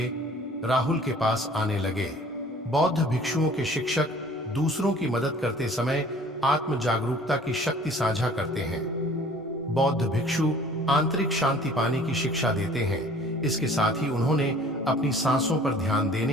राहुल के पास आने लगे। बौद्ध भिक्षुओं के शिक्षक दूसरों की मदद करते समय आत्म जागरूकता की शक्ति साझा करते हैं। बौद्ध भिक्षु आंतरिक शांति पाने की शिक्षा देते हैं। इसके साथ ही उन्होंने अपनी सांसों पर ध्यान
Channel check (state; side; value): normal; both; correlation 0.51